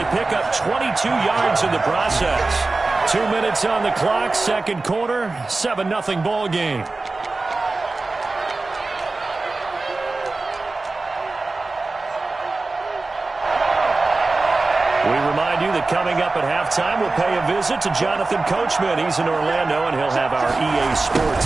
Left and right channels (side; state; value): left; quieter; 3.5 dB